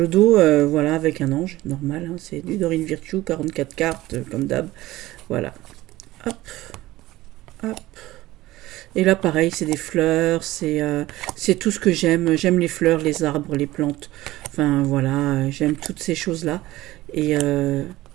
dos, voilà, avec un ange, normal, hein, c'est du Dorine Virtue, 44 cartes, comme d'hab. Voilà. Hop, hop. Et là, pareil, c'est des fleurs, c'est tout ce que j'aime. J'aime les fleurs, les arbres, les plantes. Enfin, voilà, j'aime toutes ces choses-là. Et, euh,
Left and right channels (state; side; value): quieter; left; 17.2 dB